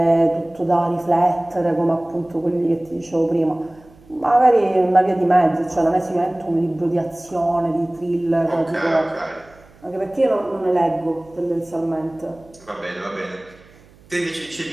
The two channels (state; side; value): noise; right; hum, 27 dB below the sound